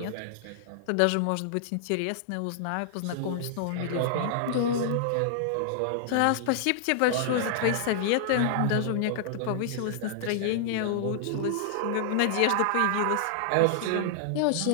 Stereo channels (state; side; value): different; both; correlation -0.01